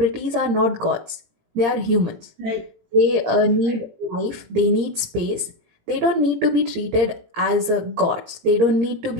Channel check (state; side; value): late; left; 17 ms